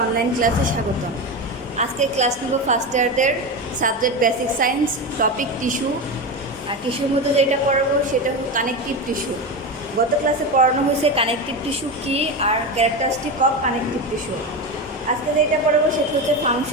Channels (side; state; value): both; normal; correlation 0.19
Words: অনলাইন ক্লাসে স্বাগতম। আজকে ক্লাস নেব ফার্স্ট ইয়ারদের subject basic science, topic tissue. আর টিস্যুর মধ্যে যেটা পড়াবো সেটা হলো কানেকটিভ টিস্যু। গত ক্লাসে পড়ানো হয়েছে কানেকটিভ টিস্যু কী আর ক্যারেক্টারিস্টিক অফ কানেকটিভ টিস্যু। আজকে যেটা পড়াবো সেটা হচ্ছে